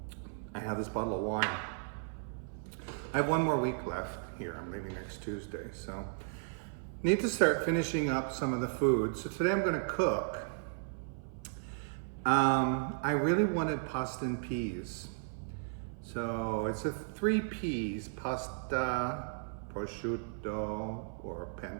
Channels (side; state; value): left; silent; 54 dB below the other